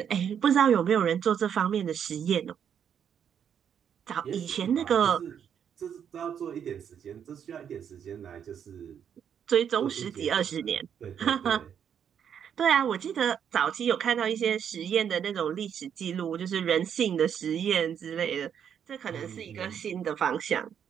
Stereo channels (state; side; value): quieter; left; 8.3 dB